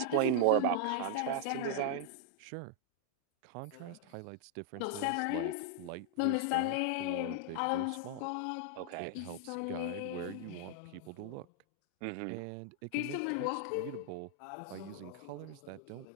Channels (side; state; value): both; different; correlation -0.01